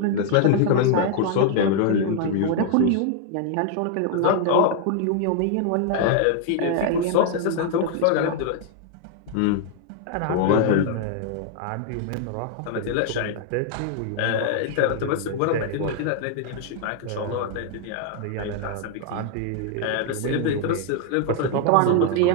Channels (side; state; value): both; different; correlation 0.00